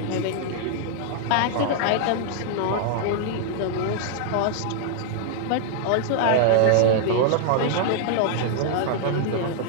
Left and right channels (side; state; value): both; different; correlation -0.01